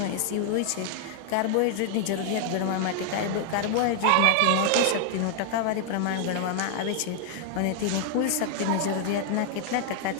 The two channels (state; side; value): different; both; correlation 0.00